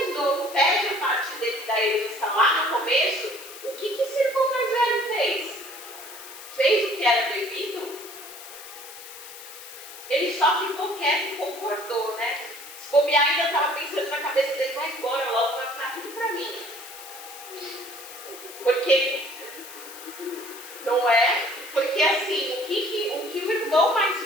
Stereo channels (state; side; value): noise; left; hiss, 14 dB below the sound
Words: novo pede a parte dele da herança lá no começo, o que esse irmão mais velho fez? Fez o que era devido? Ele só ficou quieto e concordou, né? Se bobear, ainda estava pensando na cabeça dele, vai embora logo, vai ficar tudo para mim. Porque, não é? Porque assim, o que o irmão mais